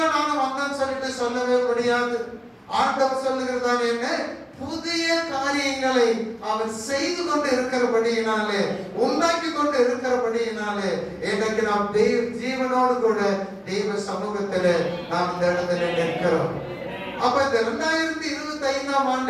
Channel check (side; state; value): both; identical; correlation 1.00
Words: நானும் வந்தேன்னு சொல்லிட்டு சொல்லவே முடியாது. ஆண்டவர் சொல்லுகிறதான என்ன, புதிய காரியங்களை அவர் செய்து கொண்டு இருக்கிறபடியினாலே, உண்டாக்கி கொண்டு இருக்கிறபடியினாலே எனக்கு நாம் தெய்வ ஜீவனோடு கூட தெய்வ சமூகத்திலே நாம் இந்த இடத்துல நிற்கிறோம். அப்ப இந்த 2025ஆம்